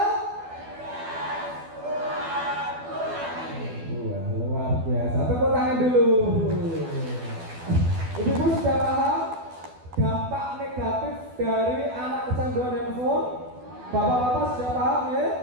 Wah, luar biasa. Tepuk tangan dulu. Ibu-ibu sudah paham dampak negatif dari anak kecanduan handphone? Bapak-bapak sudah paham ya?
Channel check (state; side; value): late; left; 12 ms